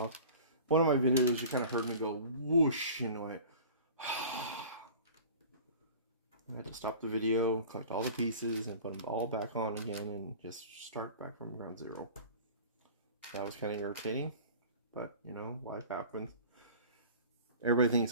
One of my videos, you kind of heard me go whoosh, you know, I had to stop the video, collect all the pieces, and put them all back on again, and just start back from ground zero. That was kind of irritating, but, you know, life happens. Everybody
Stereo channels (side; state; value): both; inverted; correlation -0.42